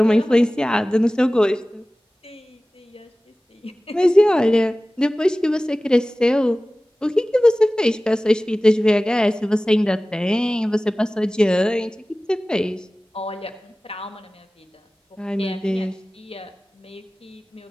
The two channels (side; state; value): both; normal; correlation 0.97